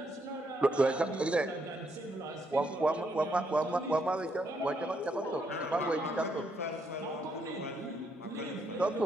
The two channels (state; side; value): normal; both; correlation 0.75